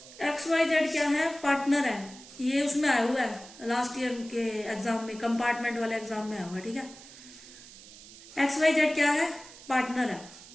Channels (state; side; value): noise; right; hiss, 18 dB below the sound